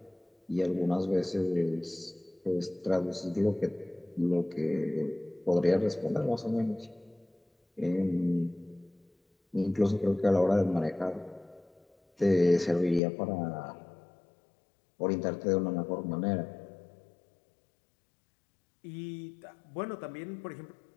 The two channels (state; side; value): drops out; right; at 13.0 s